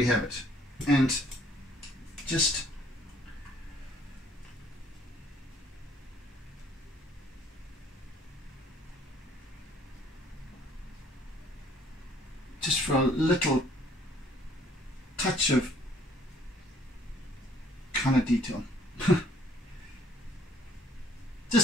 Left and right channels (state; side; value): normal; both; correlation 0.60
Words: have it, and just for a little touch of kind of detail,